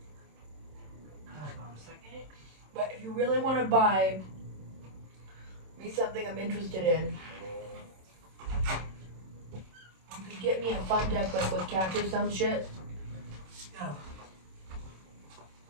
on a second. But if you really want to buy me something I'm interested in, you could get me a fun deck like with cats or some shit. Yeah.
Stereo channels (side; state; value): left; late; 27 ms